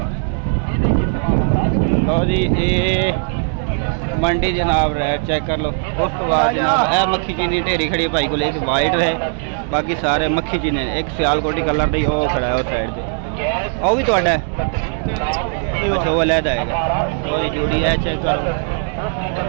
लो जी ये मंडी जनाब रेट चेक कर लो। उस तो बाद जनाब ए मक्खी चीनी ढेरी खड़ी भाई को एक वाइट है बाकी सारे मक्खी चीने। एक सियालकोटी कलर दी वो खड़ा है उस साइड से वो भी तो है। अच्छा वो अलहदा है। तो जी जोड़ी है चेक करो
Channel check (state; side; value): silent; left; 64 dB below the other